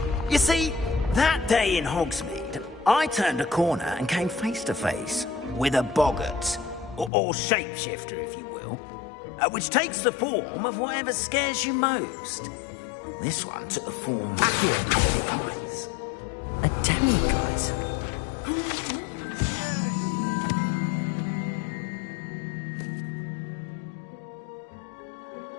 You see, that day in Hogsmeade, I turned a corner and came face to face with a boggart, or shapeshifter, if you will, which takes the form of whatever scares you most. This one took the form of demiguise. A demiguise?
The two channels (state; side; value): drops out; right; at 7.1 s